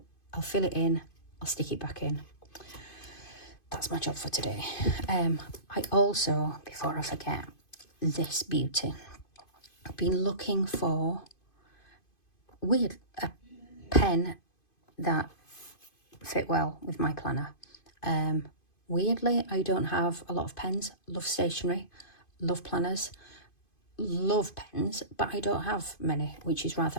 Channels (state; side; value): late; right; 2.5 ms